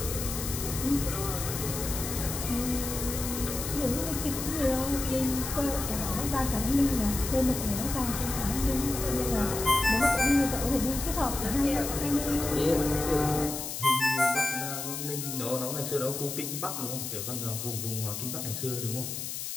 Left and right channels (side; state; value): left; noise; hiss, 5 dB below the sound